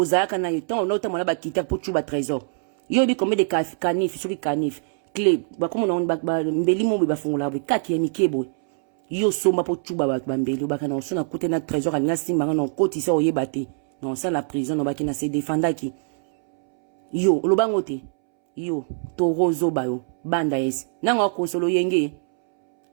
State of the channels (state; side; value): silent; left; 63 dB below the other